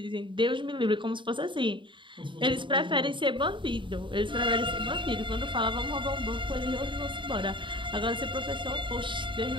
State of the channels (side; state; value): left; late; 0.24 ms